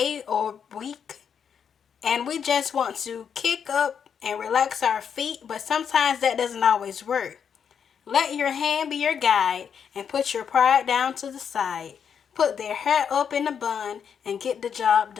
or week, and we just want to kick up and relax our feet, but sometimes that doesn't always work. Let your hand be your guide and put your pride down to the side. Put their hair up in a bun and get the job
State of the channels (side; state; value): right; quieter; 7.4 dB